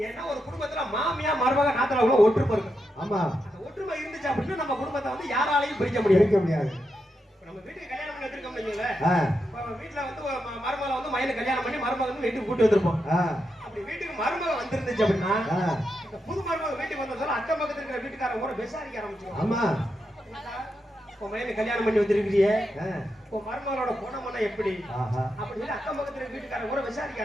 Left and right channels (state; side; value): normal; both; correlation 0.85